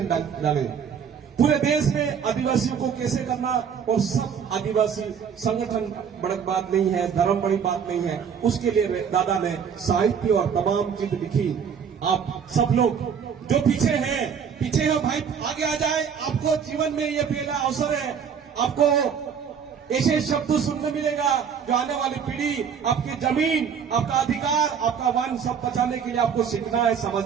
डाले। पूरे देश में आदिवासियों को कैसे करना, और सब आदिवासी संगठन बड़ी बात नहीं है, धर्म बड़ी बात नहीं है, उसके लिए दादा ने साहित्य और तमाम चीज लिखी। आप सब लोग जो पीछे हैं भाई आगे आ जाए। आपको जीवन में ये पहला अवसर है, आपको ऐसे शब्द सुनने मिलेगा जो आने वाली पीढ़ी, आपकी जमीन, आपका अधिकार, आपका वन सब बचाने के लिए आपको सीखना है,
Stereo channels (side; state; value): left; quieter; 7.2 dB